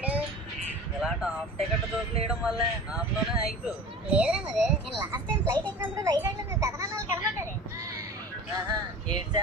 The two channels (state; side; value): normal; both; correlation 0.37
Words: ఇలా టాప్ టికెట్ దోపిలేయడం వల్లే హాఫ్ లోనే అయిపో. లేదురా మరి, నేను లాస్ట్ టైం ఫ్లైట్ ఎక్కినప్పుడు వైజాగ్ లో మేము పెదనాన్నలు కనబడ్డాడు. ఏడు